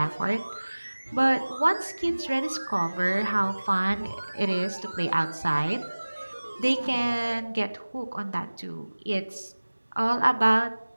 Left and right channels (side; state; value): both; inverted; correlation -1.00